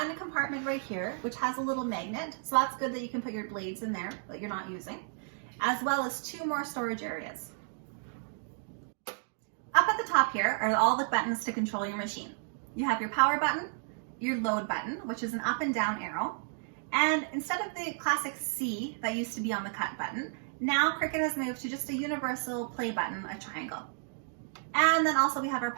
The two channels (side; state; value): left; silent; digital silence